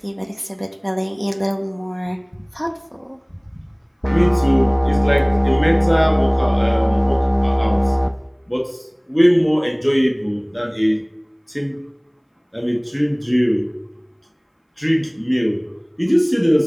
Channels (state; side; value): identical; both; correlation 1.00